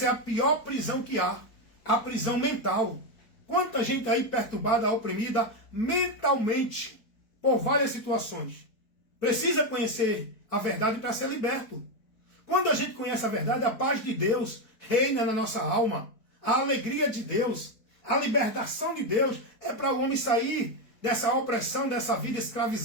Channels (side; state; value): right; late; 4.5 ms